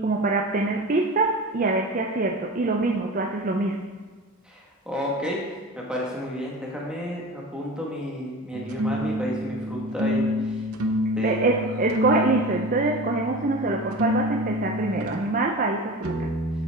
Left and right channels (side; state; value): both; normal; correlation 0.32